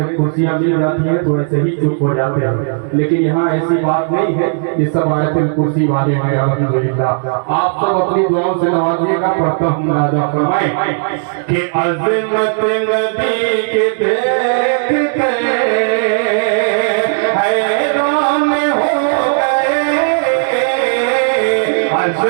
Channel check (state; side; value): silent; left; digital silence